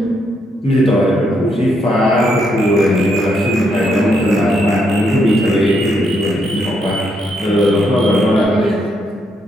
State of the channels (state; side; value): normal; both; correlation 0.76